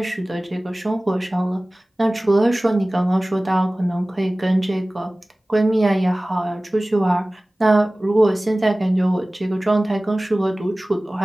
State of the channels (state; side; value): normal; both; correlation 0.98